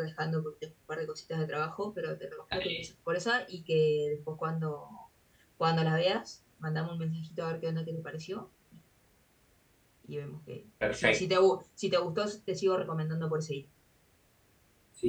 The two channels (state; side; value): identical; both; correlation 1.00